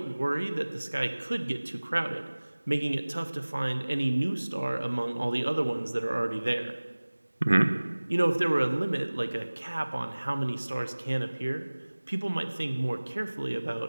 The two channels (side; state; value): both; inverted; correlation -1.00